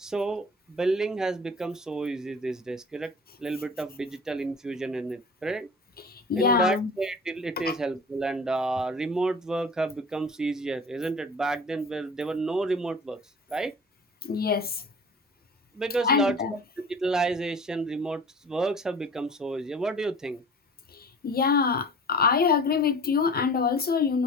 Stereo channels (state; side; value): normal; both; correlation 0.41